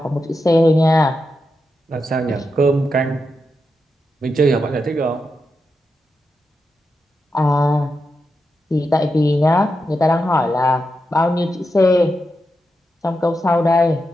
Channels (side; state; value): both; normal; correlation 0.87